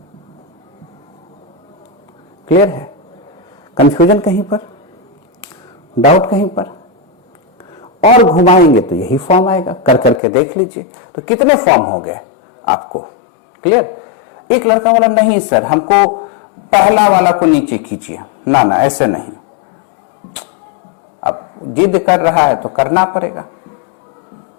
क्लियर है? कंफ्यूजन कहीं पर, डाउट कहीं पर? और घुमाएंगे तो यही फॉर्म आएगा, कर करके देख लीजिए। तो कितने फॉर्म हो गए आपको क्लियर? एक लड़का बोला नहीं सर हमको पहला वाला को नीचे खींचिए, ना ना ऐसे नहीं। अब जिद कर रहा है तो करना पड़ेगा।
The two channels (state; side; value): drops out; right; at 10.2 s